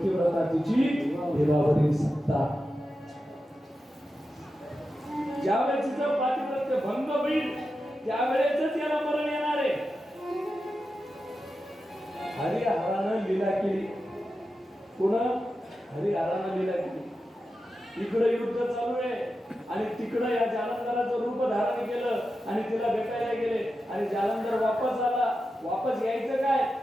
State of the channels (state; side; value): normal; both; correlation 0.90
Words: तिची देवावरील सत्ता. ज्यावेळेस तिचं पातिव्रत्य भंग होईल त्यावेळेसच याला मरण येणार आहे. हरिहरानं लीला केली. कोण? हरिहरानं लीला केली. इकडे युद्ध चालू आहे आणि तिकडे या जालंधराचं रूप धारण केलं आणि तिला भेटायला गेले आणि जालंधर वापस आला. वापस यायचं काय?